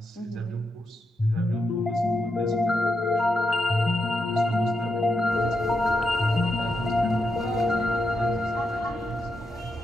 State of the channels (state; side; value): normal; both; correlation 0.84